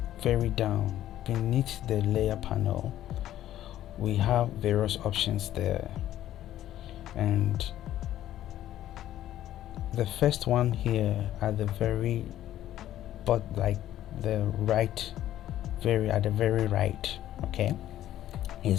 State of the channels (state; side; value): quieter; right; 12.7 dB